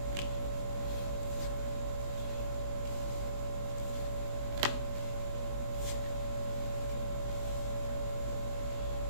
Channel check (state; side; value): late; left; 20 ms